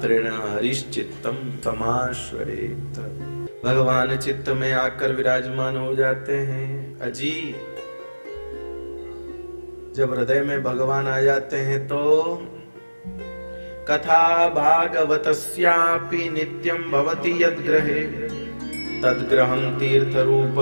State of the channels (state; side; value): inverted; both; correlation -1.00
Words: हरिश्चित्तम समाश्रयेत, भगवान चित्त में आकर विराजमान हो जाते हैं। अजी जब हृदय में भगवान आ जाते हैं तो कथा भागवतस्यापि नित्यं भवति यद्ग्रहे तद्ग्रहं तीर्थ